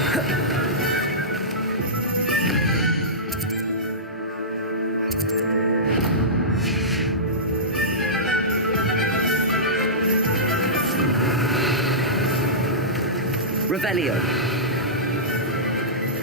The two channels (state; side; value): normal; both; correlation -0.17